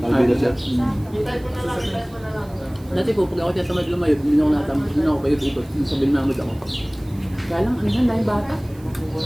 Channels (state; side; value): noise; right; hiss, 26 dB below the sound